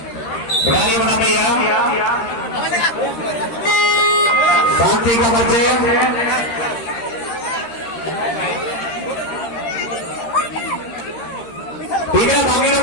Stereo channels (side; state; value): right; late; 13 ms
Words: बुढ़ानी बना भैया शांति का बच्चे ठीक है बाकी लोग